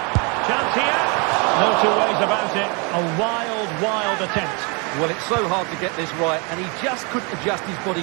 Chance here. No two ways about it. A wild attempt. Well, it's so hard to get this right, and he just couldn't adjust his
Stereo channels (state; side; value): quieter; left; 32.3 dB